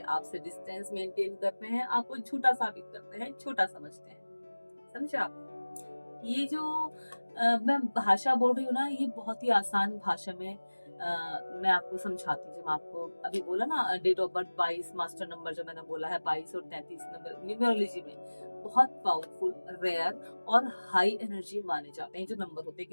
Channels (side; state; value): both; inverted; correlation -1.00